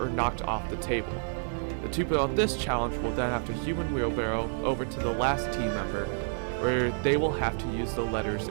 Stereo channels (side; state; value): left; silent; 58 dB below the other